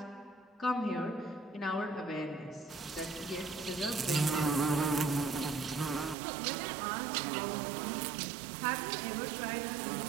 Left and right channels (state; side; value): drops out; left; at 6.2 s